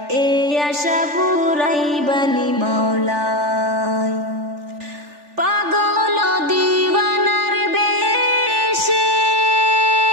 এই আশা পুরাইবানি মাওলায় পাগল দিওয়ানার বেশে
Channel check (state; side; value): late; left; 3.4 ms